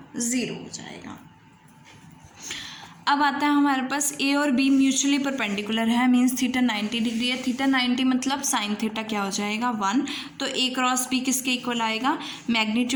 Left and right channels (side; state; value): both; identical; correlation 1.00